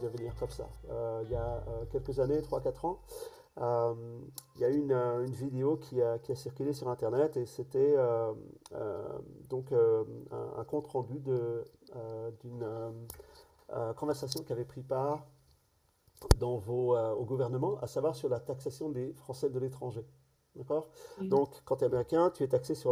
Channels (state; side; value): identical; both; correlation 1.00